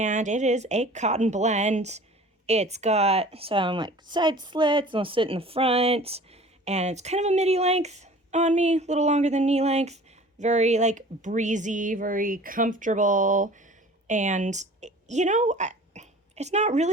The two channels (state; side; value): normal; both; correlation 0.45